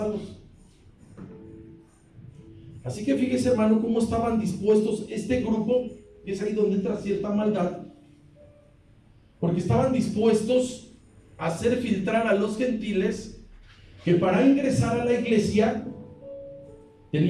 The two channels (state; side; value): identical; both; correlation 1.00